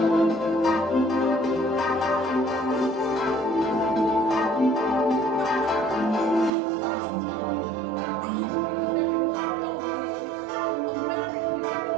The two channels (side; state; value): left; drops out; at 6.5 s